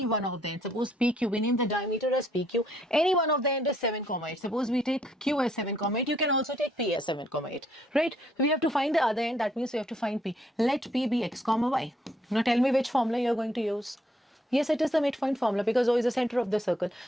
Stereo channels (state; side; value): normal; both; correlation 0.69